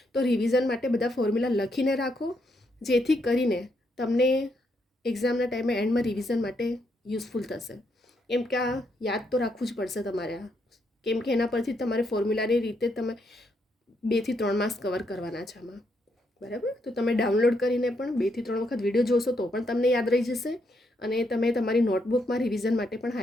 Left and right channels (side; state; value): both; normal; correlation 0.77